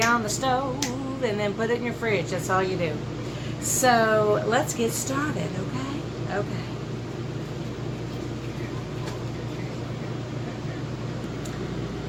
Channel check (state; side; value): identical; both; correlation 1.00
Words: on the stove. And then put it in your fridge. That's all you do. So, let's get started, okay? Okay.